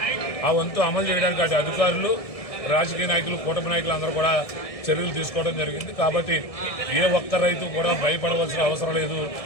ఆ వంతు అమలు చేయడానికి అటు అధికారులు, రాజకీయ నాయకులు, కూటమి నాయకులు అందరూ కూడా చర్యలు తీసుకోవడం జరిగింది. కాబట్టి ఏ ఒక్క రైతు కూడా భయపడవలసిన అవసరం లేదు.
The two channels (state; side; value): late; right; 1.7 ms